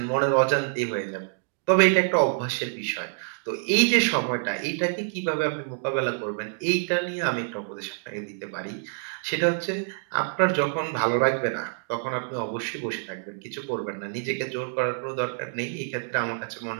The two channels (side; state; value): left; silent; digital silence